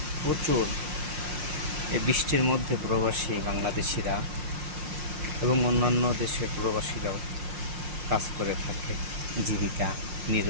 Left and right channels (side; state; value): left; late; 5.6 ms